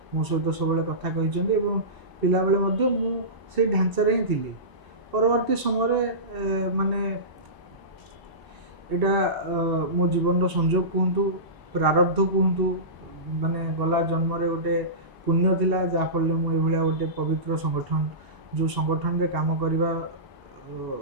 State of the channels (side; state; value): left; late; 1.0 ms